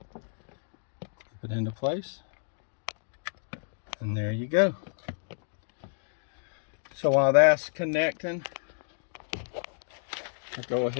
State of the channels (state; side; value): silent; right; digital silence